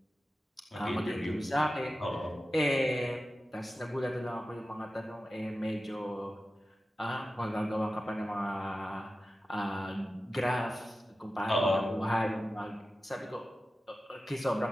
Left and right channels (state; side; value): normal; both; correlation 0.94